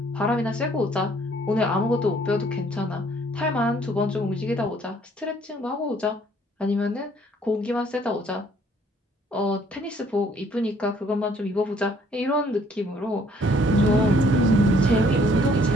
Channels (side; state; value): both; normal; correlation 0.62